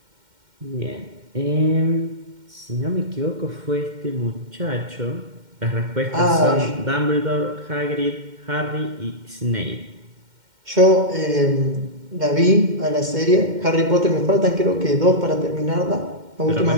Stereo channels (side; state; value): left; late; 2.1 ms